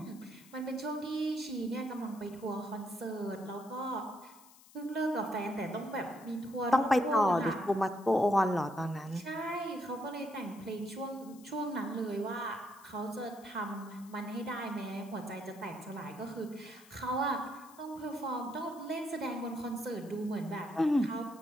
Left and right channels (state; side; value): noise; left; hiss, 23 dB below the sound